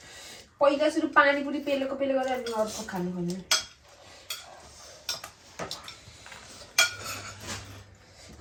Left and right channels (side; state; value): both; identical; correlation 1.00